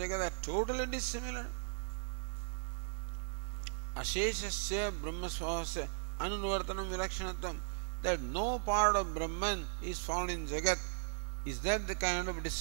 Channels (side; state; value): left; silent; 53 dB below the other